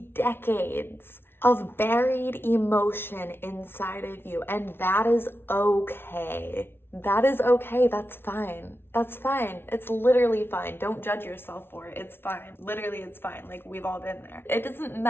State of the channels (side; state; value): right; late; 0.11 ms